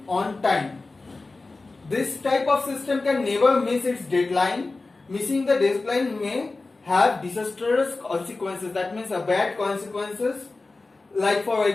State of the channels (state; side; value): quieter; right; 3.5 dB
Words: on time. This type of system can never miss its deadline. Missing the deadline may have disastrous consequences, that means a bad consequences, like for